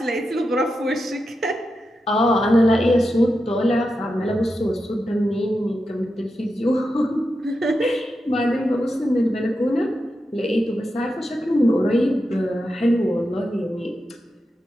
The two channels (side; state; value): both; normal; correlation 0.89